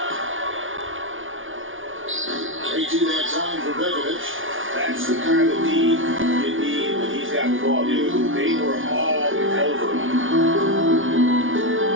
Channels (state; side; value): late; left; 0.57 ms